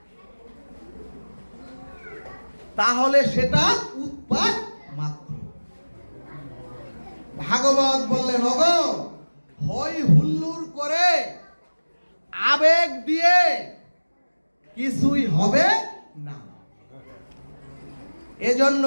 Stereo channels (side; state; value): both; inverted; correlation -1.00